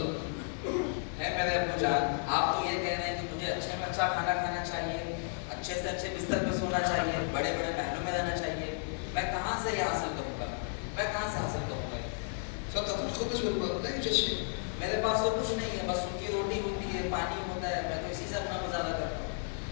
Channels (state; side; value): silent; right; digital silence